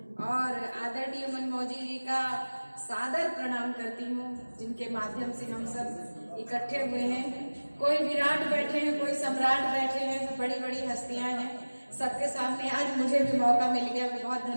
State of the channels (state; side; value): inverted; both; correlation -1.00